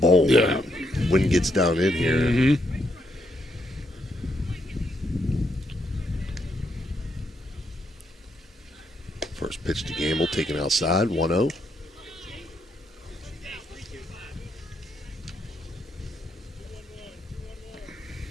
Yeah. Wind gets down in here. Mm-hmm. First pitch to Gamble, taken outside, 1-0.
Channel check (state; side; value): normal; both; correlation 0.77